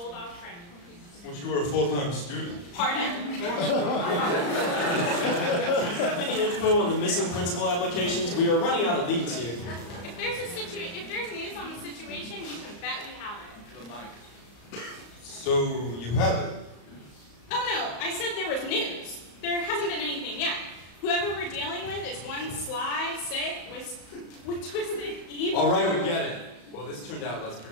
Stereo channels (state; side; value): late; right; 34 ms